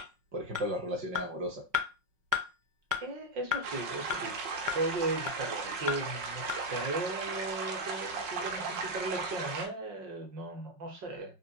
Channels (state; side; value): late; left; 5.5 ms